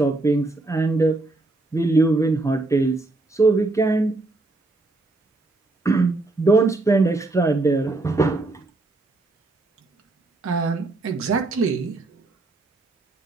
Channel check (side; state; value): left; quieter; 3.1 dB